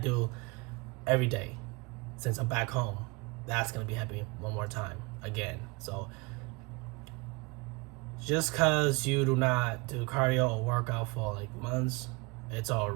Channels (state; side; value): quieter; left; 27.3 dB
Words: every day since I'm back home. That's gonna be happening one more time again. So just cause you do not do cardio or workout for like months, it's all